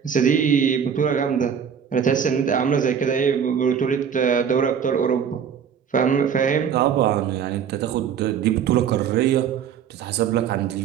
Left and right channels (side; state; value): left; quieter; 7.7 dB